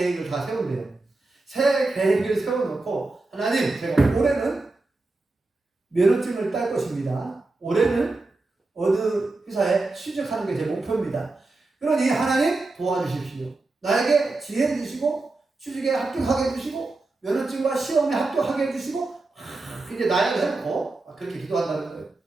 다 세운대요. 새해 계획을 세워놓고 하나님, 제가 올해는 면허증을 딸 것입니다. 올해는 어느 회사에 취직하는 게 제 목표입니다. 그러니 하나님 도와주십시오. 나에게 지혜 주시고 취직에 합격하게 해주시고 면허증과 시험에 합격하게 해주시고 이제 나약을 해놓고 그렇게 기도한다는 거예요.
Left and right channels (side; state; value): left; quieter; 3.3 dB